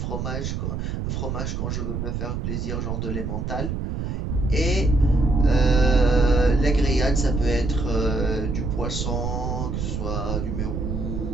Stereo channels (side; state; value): right; noise; rumble, 3 dB below the sound